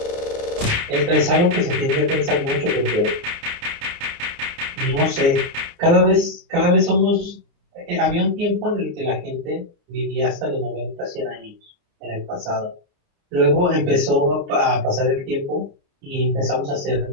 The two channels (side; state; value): left; late; 29 ms